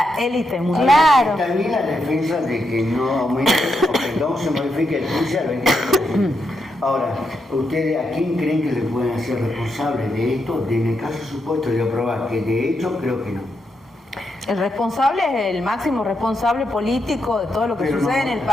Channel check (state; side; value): normal; both; correlation 0.82